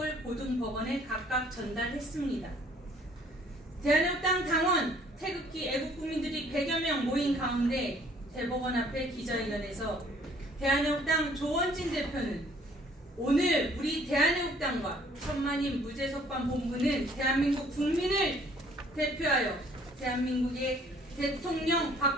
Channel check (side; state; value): both; normal; correlation 0.58